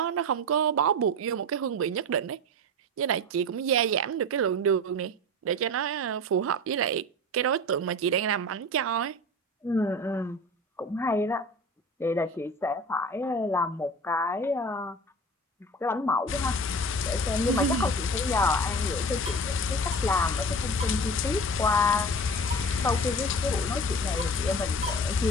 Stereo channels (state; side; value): normal; both; correlation 0.33